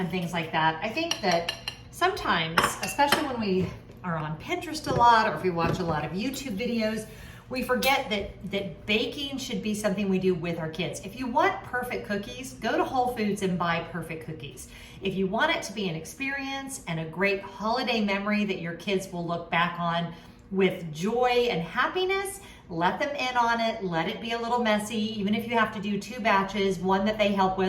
things like that. I think that sometimes, especially when we are on Pinterest a lot or if we watch a lot of YouTube videos, we forget that baking should be something we do with our kids. If you want perfect cookies, go to Whole Foods and buy perfect cookies. If you want it to be an experience and a great holiday memory that your kids will look back on with joy and happiness, let them in on it, let it be a little messy, even if you have to do 2 batches, one that they help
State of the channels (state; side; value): identical; both; correlation 1.00